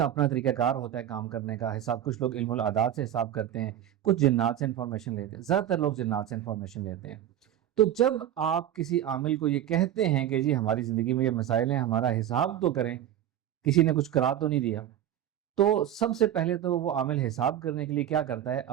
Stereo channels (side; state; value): left; quieter; 11.2 dB